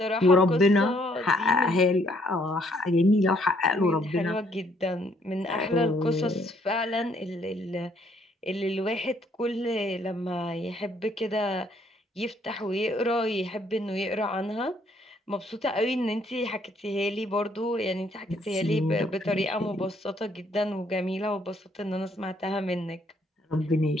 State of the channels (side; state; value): both; normal; correlation 0.67